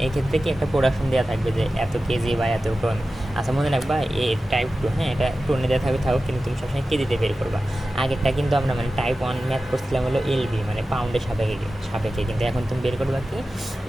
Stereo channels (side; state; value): both; normal; correlation 0.94